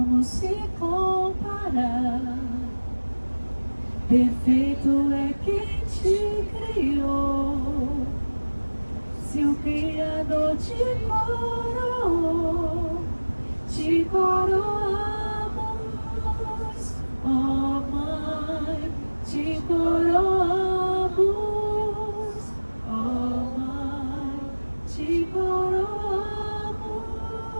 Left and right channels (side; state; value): both; inverted; correlation -1.00